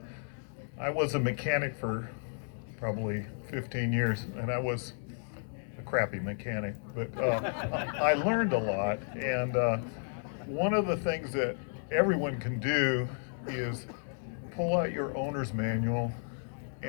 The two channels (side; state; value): right; silent; digital silence